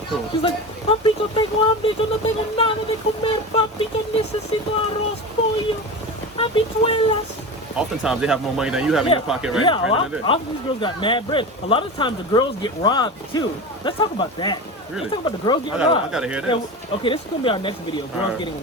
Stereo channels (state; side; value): normal; both; correlation 0.27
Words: Cool. She's like, papi, yo tengo hambre, yo no tengo nada de comer, papi, yo necesito arroz, pollo, habichuelas. Oftentimes they have more money than you have in your pocket right now. Yeah, often these girls got mad bread. A lot of times the girls get robbed too. Let's talk about that. Really? Let's talk about the girls getting robbed. I gotta hear this. Okay, this is gonna be our next video. Girls getting